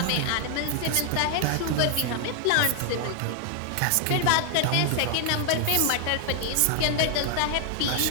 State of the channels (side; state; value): both; different; correlation 0.00